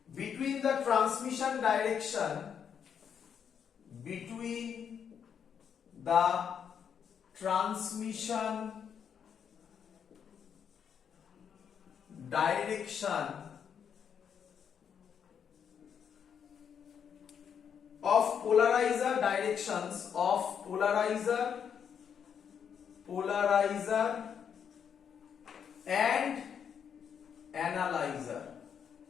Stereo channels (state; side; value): quieter; right; 7.7 dB